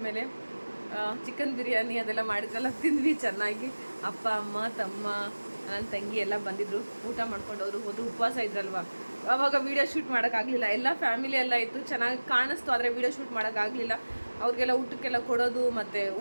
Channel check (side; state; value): both; inverted; correlation -1.00